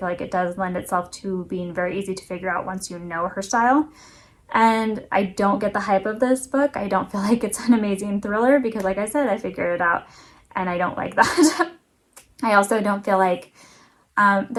like it does lend itself to being very easy to figure out once you know her style. And I don't get the hype of this book. I don't feel like it's an amazing thriller because, like I said, I figured it out and I don't like that. I also don't feel like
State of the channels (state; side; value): identical; both; correlation 1.00